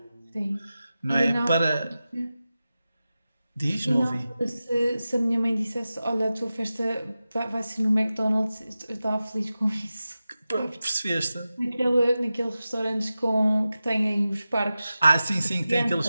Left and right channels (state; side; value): inverted; both; correlation -0.94